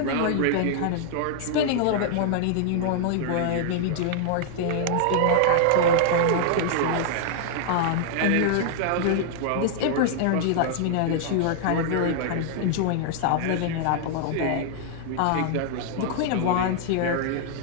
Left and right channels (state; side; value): different; both; correlation -0.01